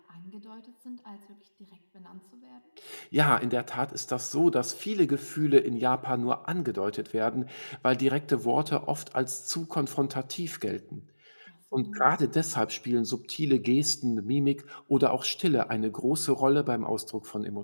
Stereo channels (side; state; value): both; inverted; correlation -1.00